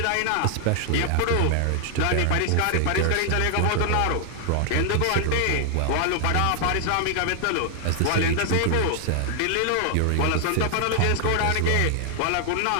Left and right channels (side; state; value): both; different; correlation 0.00